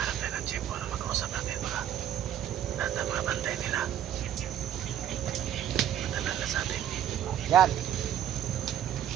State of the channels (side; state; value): left; quieter; 10.6 dB